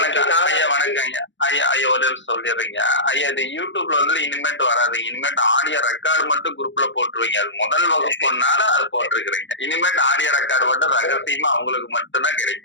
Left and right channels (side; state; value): right; late; 0.54 ms